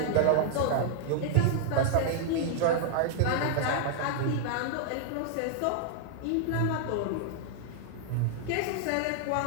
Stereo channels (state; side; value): different; both; correlation -0.01